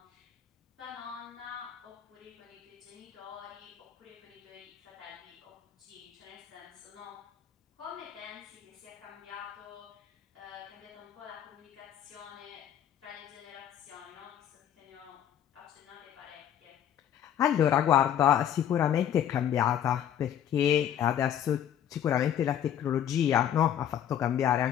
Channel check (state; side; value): quieter; right; 10.0 dB